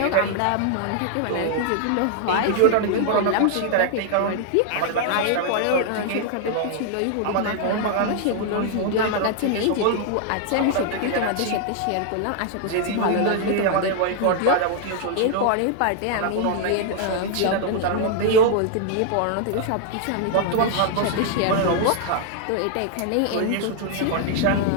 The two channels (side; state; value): both; different; correlation 0.00